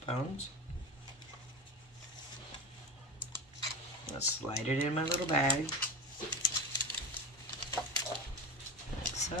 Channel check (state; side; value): normal; both; correlation 0.28